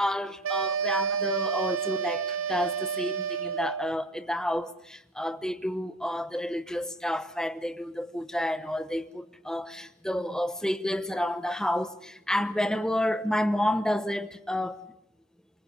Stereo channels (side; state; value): both; normal; correlation 0.62